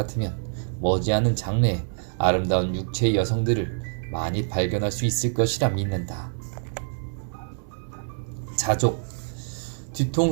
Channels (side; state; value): left; silent; 61 dB below the other